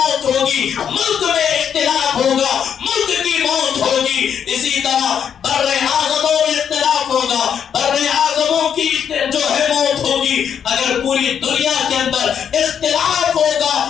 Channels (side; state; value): right; quieter; 8.2 dB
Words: ہوگی، ملک میں اختلاف ہوگا ملک کی موت ہوگی۔ اسی طرح بر اعظموں میں اختلاف ہوگا بر اعظموں کی جو ہے موت ہوگی۔ اگر پوری دنیا کے اندر اختلاف ہوگا